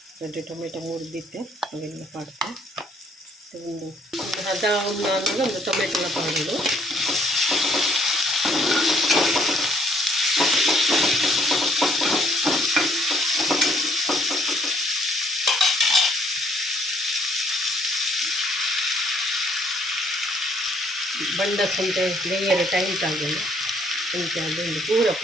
ಗಡ್ಡೆ ಟೊಮೆಟೊ ಮುರಿದಿತ್ತೆ ಅವೆಲ್ಲ ಪಾಡ್ತೆ ಒಂದು ಹದ ಒಂದು ಒಂದು ಟೊಮೆಟೊನ ಪಾಡೋದು ಬಂಡಸ್ ಅಂತ ಲೇಯರ್ ಟೈಟ್ ಆಗಿಲ್ಲ ಅಂತ ಅದೊಂದು ಪೂರ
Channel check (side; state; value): both; normal; correlation 0.65